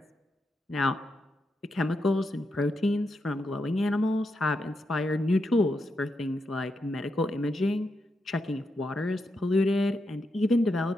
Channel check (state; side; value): normal; both; correlation 0.84